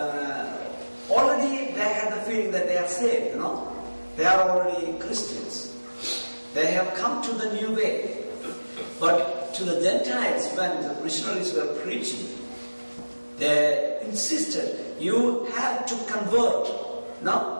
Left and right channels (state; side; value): inverted; both; correlation -1.00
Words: already they had the feeling that they are saved, they are already Christians. They have come to the new way. But to the Gentiles, when the missionaries were preaching, they insisted, you have to convert.